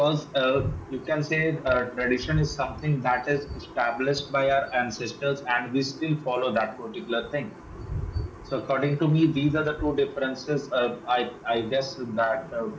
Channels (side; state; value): both; identical; correlation 1.00